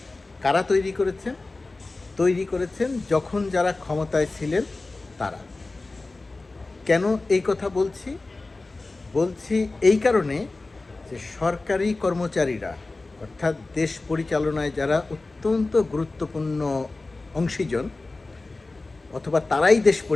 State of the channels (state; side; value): quieter; right; 3.3 dB